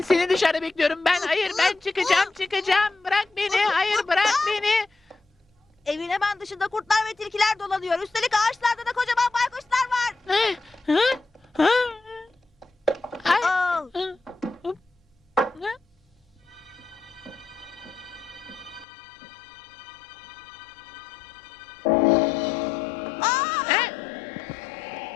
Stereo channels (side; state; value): right; drops out; at 18.9 s